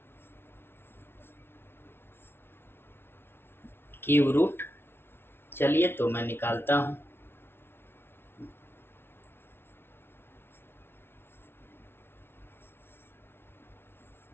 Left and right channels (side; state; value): right; late; 0.11 ms